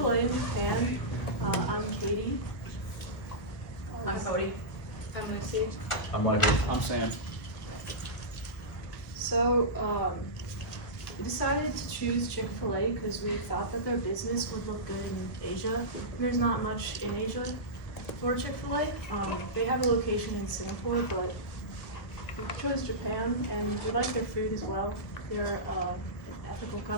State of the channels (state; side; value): late; right; 1.7 ms